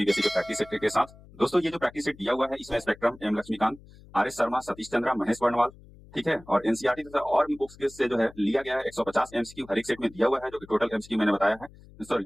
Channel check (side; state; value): left; noise; hum, 22 dB below the sound